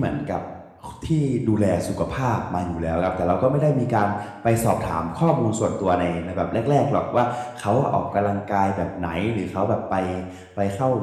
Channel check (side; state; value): both; identical; correlation 1.00